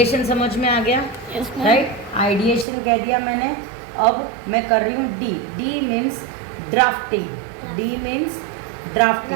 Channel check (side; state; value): left; drops out; at 2.7 s